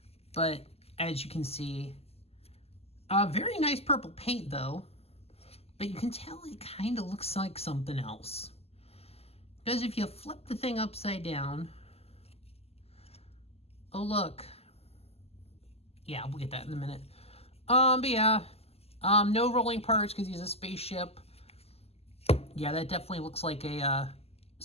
but as you can see, very nice purple paint though. But you can tell it kind of looks like something else. Because if you flip the thing upside down, oh look. Yeah, we'll get that in a minute. But yeah, no rolling parts because he's a spaceship. Yeah, that definitely looks like a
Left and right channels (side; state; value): right; late; 0.29 ms